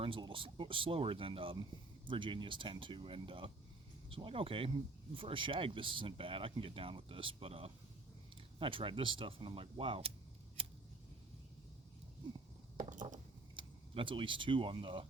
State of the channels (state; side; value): quieter; left; 3.1 dB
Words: a little slower than Virginias tend to. And so I'm like, okay, for a shag, this isn't bad. I can get down with this. But I tried this stuff, and I'm like, wow. That's at least 2 on the